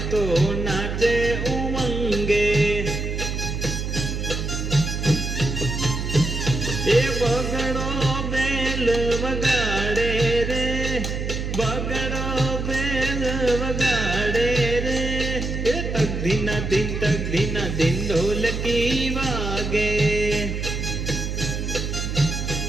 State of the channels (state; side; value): noise; right; hum, 3 dB below the sound